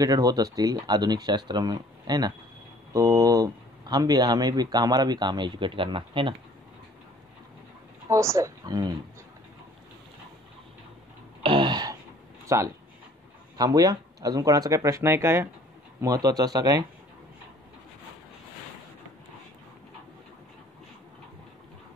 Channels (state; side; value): normal; both; correlation 0.54